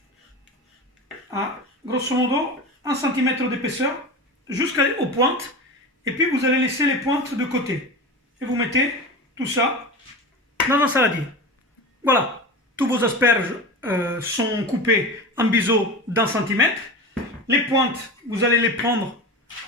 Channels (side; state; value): both; normal; correlation 0.28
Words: à grosso modo 1 cm d'épaisseur jusqu'aux pointes, et puis vous allez laisser les pointes de côté et vous mettez tout ça dans un saladier. Voilà, tous vos asperges sont coupés en biseau d'1 cm. Les pointes, vous allez les prendre